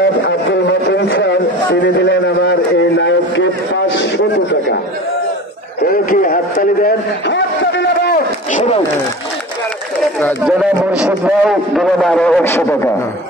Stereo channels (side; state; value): both; normal; correlation 0.36